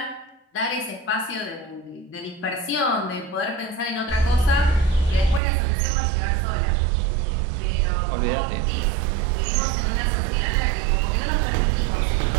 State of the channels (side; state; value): left; drops out; at 5.4 s